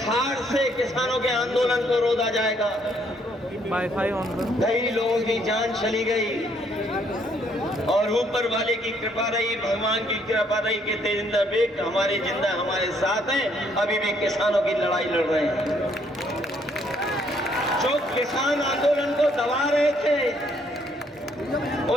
से किसानों के आंदोलन को रोका जाएगा। वाईफाई ऑन करो। कई लोगों की जान चली गई, और ऊपर वाले की कृपा रही, भगवान की कृपा रही कि तेजिंदर बेग हमारे जिंदा हमारे साथ हैं, अभी भी किसानों की लड़ाई लड़ रहे हैं। जो किसान आंदोलन को दबा रहे थे,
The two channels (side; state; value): both; normal; correlation 0.68